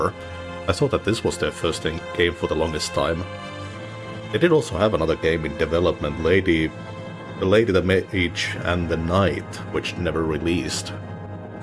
I thought that this was their first game for the longest time. They did also have another game in development, The Lady, the Mage, and the Knight, which never released.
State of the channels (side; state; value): both; identical; correlation 1.00